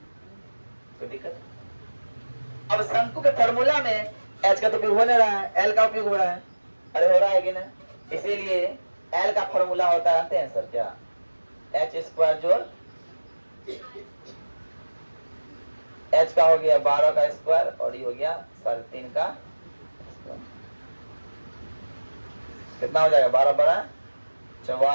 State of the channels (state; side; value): inverted; both; correlation -1.00